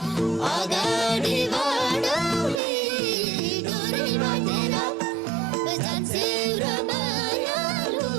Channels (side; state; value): left; drops out; at 2.6 s